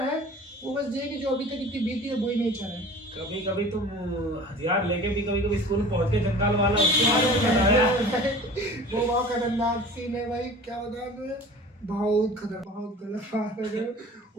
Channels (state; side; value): normal; both; correlation 0.42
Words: है, वो बस ये कि जो अभी तक इतनी बीती है वही नेचर है। कभी कभी तुम हथियार लेके भी कभी स्कूल में पहुंच के जंगल वाला वो बहुत खतरनाक सीन है भाई, क्या बताऊं तुम्हें, बहुत खतरनाक, बहुत गलत बात है।